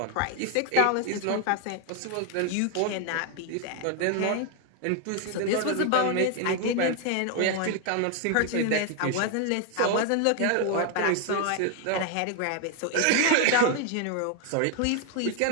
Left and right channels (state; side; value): different; both; correlation 0.01